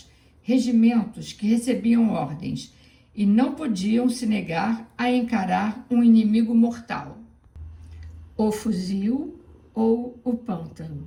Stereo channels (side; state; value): both; identical; correlation 1.00